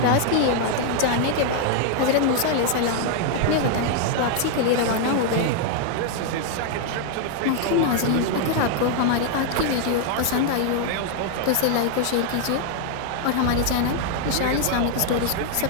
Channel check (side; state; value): both; different; correlation 0.00